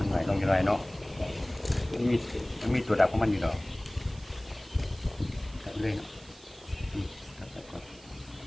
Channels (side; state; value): right; noise; hiss, 23 dB below the sound